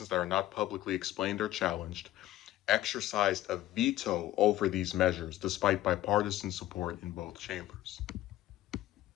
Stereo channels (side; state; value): right; quieter; 14.6 dB